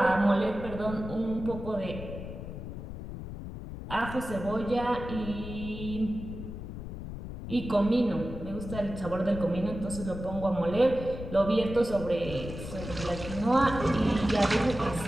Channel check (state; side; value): noise; left; rumble, 9 dB below the sound